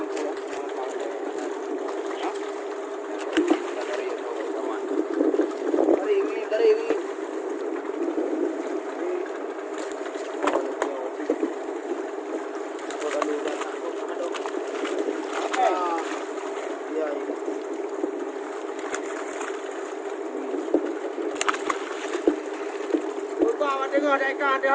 Dengar dekat dia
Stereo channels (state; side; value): identical; both; correlation 1.00